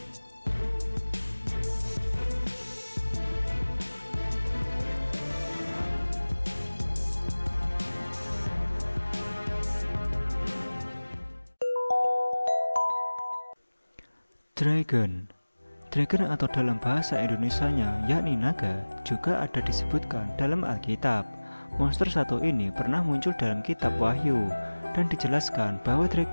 Dragon atau dalam bahasa Indonesianya yakni naga juga ada disebutkan dalam Alkitab. Monster satu ini pernah muncul dalam kitab Wahyu dan dijelaskan bahwa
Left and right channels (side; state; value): both; inverted; correlation -1.00